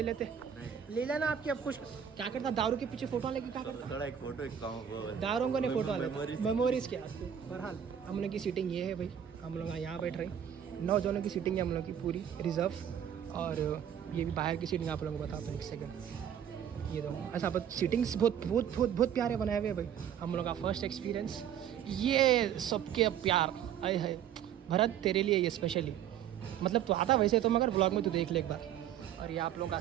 लेते ले लेना आपकी। अब कुछ क्या करता, दारू के पीछे फोटो लेके क्या करता? थोड़ा एक फोटो, एक दारों को नहीं फोटो मेमोरीज क्या। बहरहाल हम लोग की सीटिंग ये है भाई, हम लोग यहाँ बैठ रहे हैं। 9 जनों की सीटिंग है हम लोग की पूरी रिजर्व। और ये भी बाहर की सीटिंग आप लोगों को बताता हूँ एक सेकंड। ये दो ऐसा सीटिंग्स बहुत प्यारे बनाए हुए भाई। हम लोग का फर्स्ट एक्सपीरियंस ये सबके प्यार आए है। भरत तेरे लिए ये स्पेशली, मतलब तो आता वैसे तो, मगर ब्लॉग में तो देख ले एक बार। और ये आप लोगों का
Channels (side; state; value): left; quieter; 9.4 dB